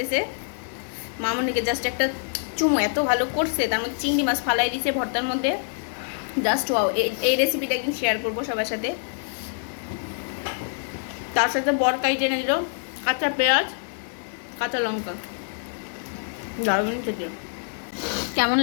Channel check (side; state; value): right; silent; 61 dB below the other